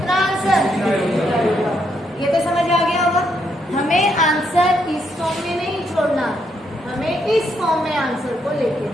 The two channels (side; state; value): both; normal; correlation 0.76